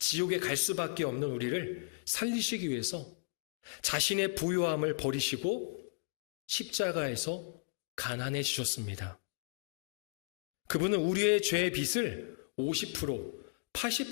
갈 수밖에 없는 우리를 살리시기 위해서 자신의 부유함을 버리시고 십자가에서 가난해지셨습니다. 그분은 우리의 죄의 빚을 50%,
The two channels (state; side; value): quieter; right; 37.8 dB